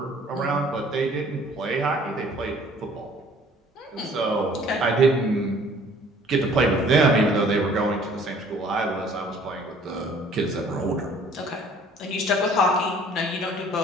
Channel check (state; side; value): normal; both; correlation 0.55